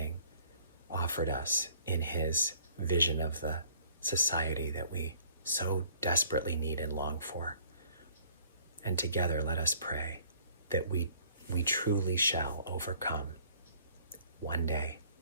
offered us in his vision of the society that we so desperately need and long for. And together let us pray that we truly shall overcome one day.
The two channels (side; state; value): both; inverted; correlation -0.58